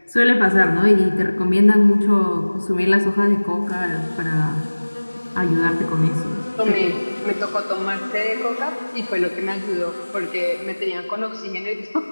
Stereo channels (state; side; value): inverted; both; correlation -1.00